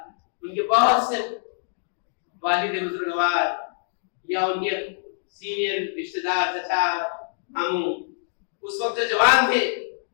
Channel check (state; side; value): silent; right; digital silence